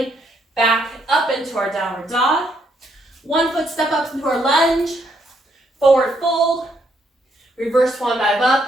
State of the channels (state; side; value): normal; both; correlation 0.74